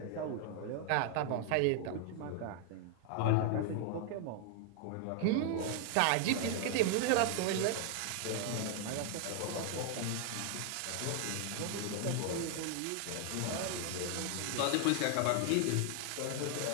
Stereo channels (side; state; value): both; different; correlation 0.00